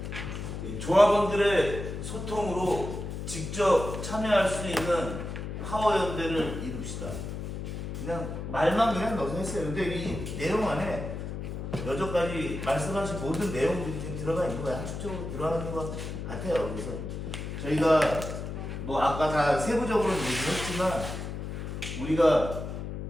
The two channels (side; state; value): left; noise; hum, 6 dB below the sound